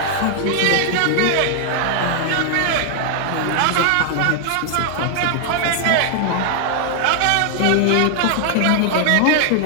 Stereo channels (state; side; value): different; both; correlation 0.00